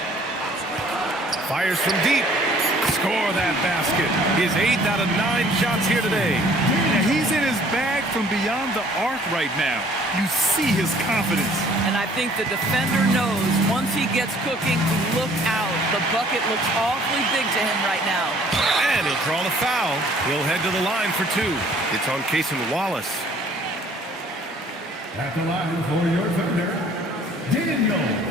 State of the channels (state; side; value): normal; both; correlation 0.57